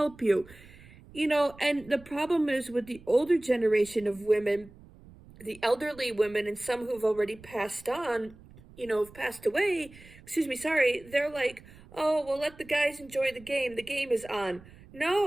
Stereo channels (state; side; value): noise; right; rumble, 22 dB below the sound